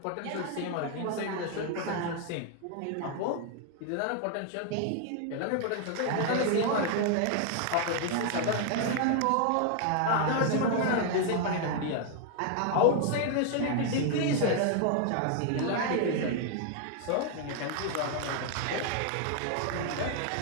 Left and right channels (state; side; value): different; both; correlation 0.00